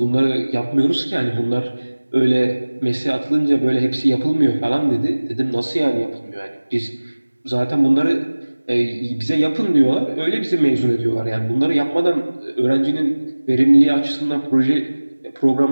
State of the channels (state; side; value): inverted; both; correlation -1.00